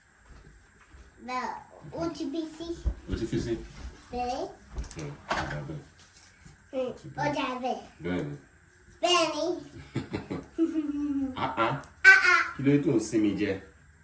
Bẹ́ẹ̀ ó ti bí sí. O ti fi sí? Bẹ́ẹ̀. Ó dà bẹ́ẹ̀. Bẹ́ẹ̀ni. Bẹ́ẹ̀ni. Kí ló tó ń sinmi jẹ?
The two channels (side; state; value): both; identical; correlation 1.00